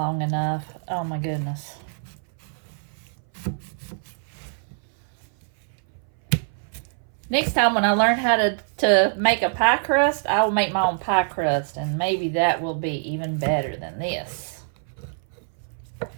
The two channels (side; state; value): left; silent; 59 dB below the other